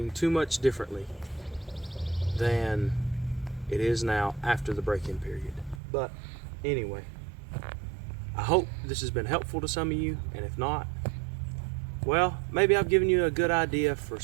too much differently than it is now after the break-in period. But anyway, I hope this has been helpful to some of you, and if not, well, maybe I've given you a good idea for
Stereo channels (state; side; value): drops out; left; at 5.8 s